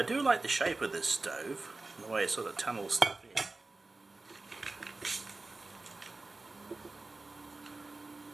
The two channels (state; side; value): quieter; left; 3.3 dB